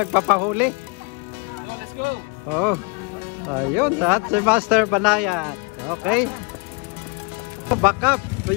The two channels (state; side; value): quieter; right; 31.2 dB